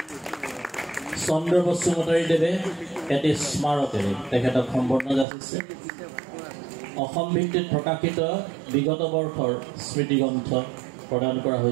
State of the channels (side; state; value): left; drops out; at 5.2 s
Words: চন্দ্ৰ বসুমতাৰী দেৱে এটি স্মাৰকেৰে তেখেতক সম্বৰ্ধনা যাচিছে। অসম ভিত্তিত প্ৰকাশিত বিগত বৰ্ষৰ স্মৃতিগ্ৰন্থ প্ৰদান কৰা